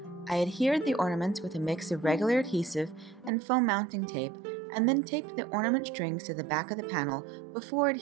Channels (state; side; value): drops out; left; at 3.3 s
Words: I adhered the ornaments with a mix of regular adhesive and foam mounting tape, and then taped the ornament strings to the back of the panel before